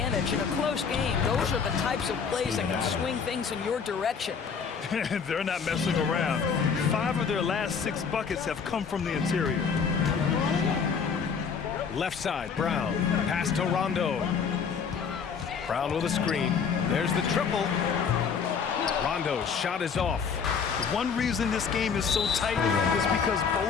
in a close game. Those are the types of plays that can swing things in your direction. They're not messing around. 5 of their last 6 buckets have come from the interior. Left side, Brown. Pass to Rondo. Brown with a screen. There's the triple. Rondo's shot is off. One reason this game is so tight is because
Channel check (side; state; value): right; quieter; 6.2 dB